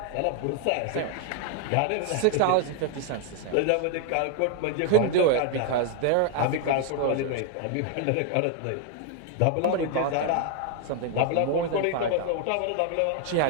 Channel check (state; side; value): different; both; correlation 0.00